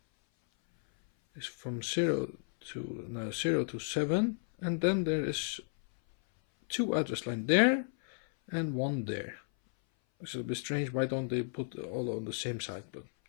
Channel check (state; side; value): silent; right; 55 dB below the other